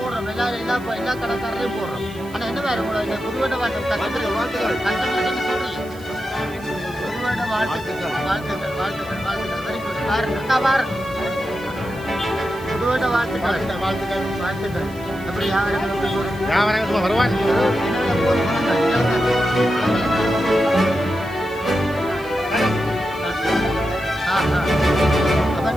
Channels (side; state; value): right; noise; hiss, 22 dB below the sound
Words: எல்லா கடைக்காரரையும் போடுறோம். ஆனால் என்ன வேறு உங்களோட இந்த புதுவண்ட வாழ்த்துக்கள் கஸ்டமருக்கு என்ன சொல்கிறீங்க? புதுவண்ட வாழ்த்துக்கள் வாழ்த்துக்கள் வாழ்த்துக்கள் வாழ்த்துக்கள். Very good. பாருங்க பாருங்க புதுவண்ட வாழ்த்துக்கள் வாழ்த்துக்கள் வாழ்த்துக்கள். எப்படி வியாபாரங்கள் வருவாங்க